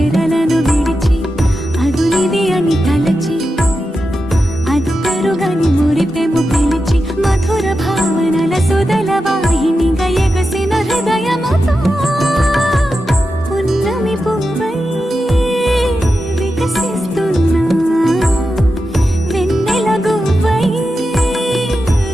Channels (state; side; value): normal; both; correlation 0.90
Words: విడిచి అదునిది అని తలచి అదు పెరుగని మురిపెము పిలిచి మధుర భావనల సుదల వాహినిగా ఎగసిన హృదయముతో పున్నమి పువ్వై వికసిస్తున్నా వెన్నెల గువ్వై